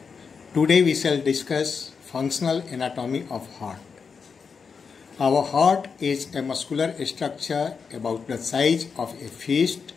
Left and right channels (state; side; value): quieter; right; 5.7 dB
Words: Today we shall discuss functional anatomy of heart. Our heart is a muscular structure about the size of a fist